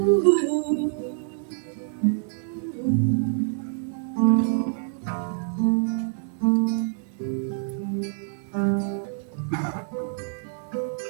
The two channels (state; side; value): silent; left; digital silence